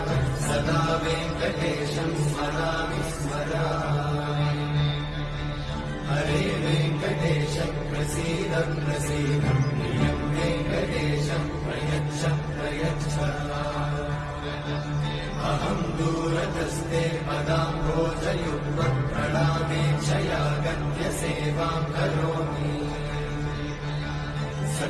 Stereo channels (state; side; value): identical; both; correlation 1.00